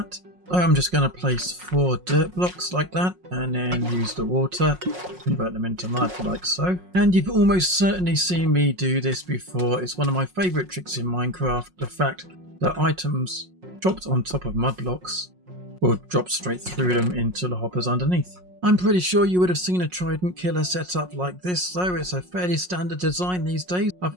I'm just going to place 4 dirt blocks like that and then use the water, convert them into mud like so. And you've almost certainly seen me do this before. It's one of my favourite tricks in Minecraft, the fact that items dropped on top of mud blocks will drop straight through them into the hoppers underneath. I'm pretty sure you would have seen a trident killer set up like this though. It's a fairly standard design these days.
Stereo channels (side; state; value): left; late; 5.5 ms